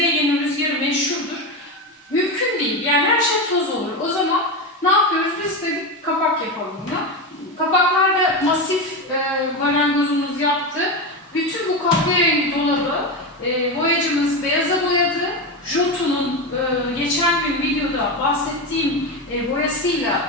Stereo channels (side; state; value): both; normal; correlation 0.17